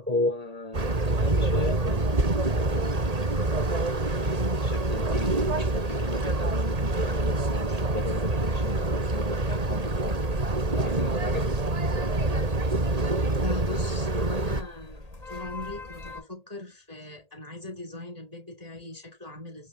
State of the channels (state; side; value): late; left; 1.8 ms